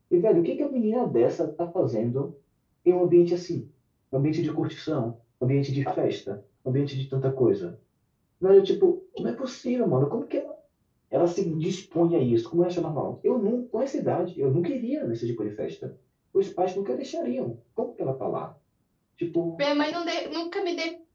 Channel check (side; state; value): both; identical; correlation 1.00